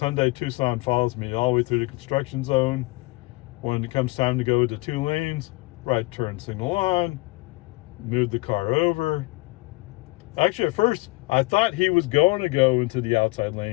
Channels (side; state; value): right; quieter; 23.6 dB